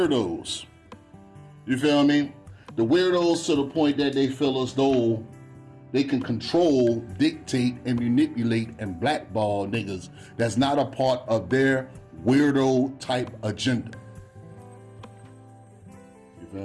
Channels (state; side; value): identical; both; correlation 1.00